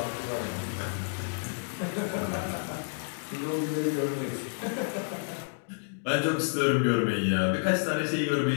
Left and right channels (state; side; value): silent; right; digital silence